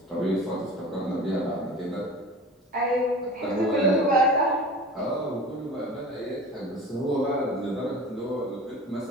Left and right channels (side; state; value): both; normal; correlation 0.38